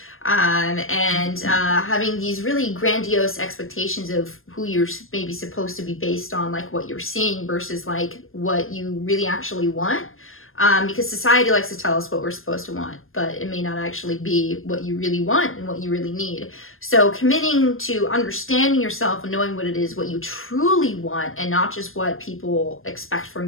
and having these really grandiose expectations of who you're maybe supposed to be based on, like what you're seeing versus like what you really actually want. Because society likes to tell us what we're supposed to want, but it may not actually be what you really want and what you really need. So committing to understanding yourself and knowing what it is, what you truly want, and not just what people expect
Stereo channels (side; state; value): right; late; 0.60 ms